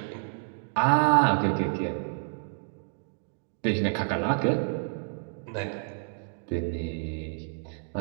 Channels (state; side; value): silent; left; digital silence